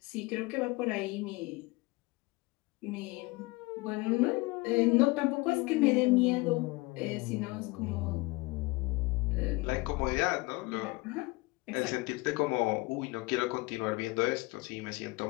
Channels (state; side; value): quieter; right; 23.8 dB